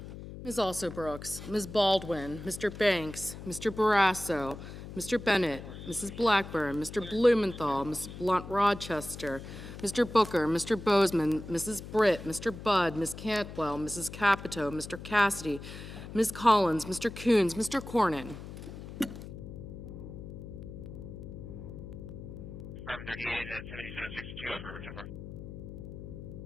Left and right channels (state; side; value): noise; left; hum, 11 dB below the sound